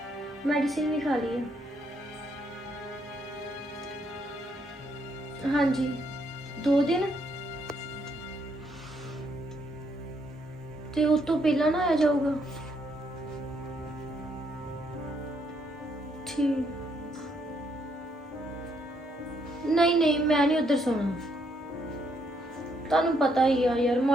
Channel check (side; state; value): both; normal; correlation 0.73